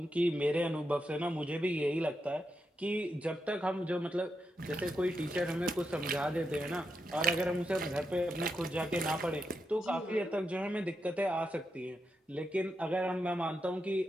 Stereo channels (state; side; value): normal; both; correlation 0.85